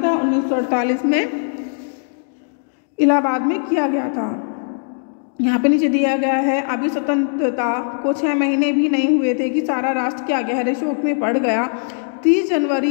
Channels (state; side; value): silent; right; digital silence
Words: था? 1948 में इलाहाबाद में किया गया था। यहाँ पे नीचे दिया गया है, अभी स्वतंत्रता को 6 महीने भी नहीं हुए थे कि सारा राष्ट्र क्या गहरे शोक में पड़ गया। 30